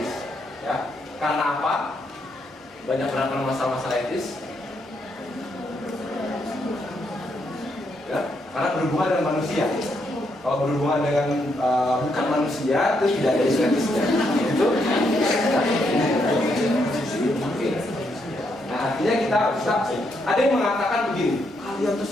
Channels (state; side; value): normal; both; correlation 0.77